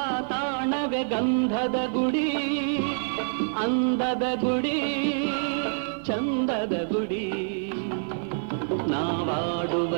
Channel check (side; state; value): left; silent; 60 dB below the other